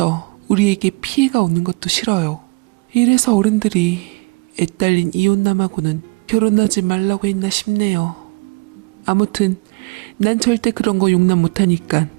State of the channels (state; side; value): quieter; left; 28.3 dB